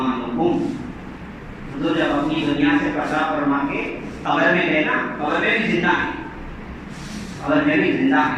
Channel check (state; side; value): identical; both; correlation 1.00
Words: حضور جب اپنی دنیا سے پردہ فرما کے قبر میں گئے نا، قبر میں بھی زندہ ہیں، قبر میں بھی زندہ